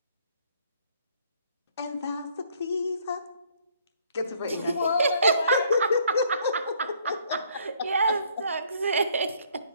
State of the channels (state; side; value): inverted; both; correlation -0.63